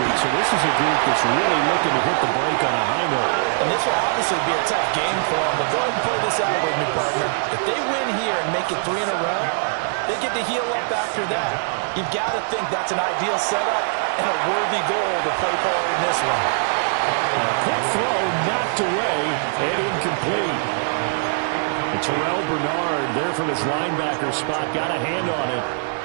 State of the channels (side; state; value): left; silent; digital silence